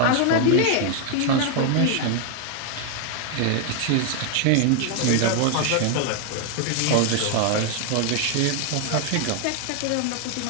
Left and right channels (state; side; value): different; both; correlation 0.00